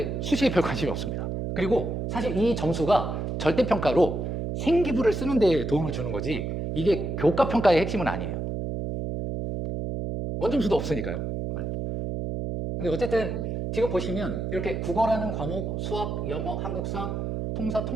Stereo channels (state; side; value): noise; right; hum, 3 dB below the sound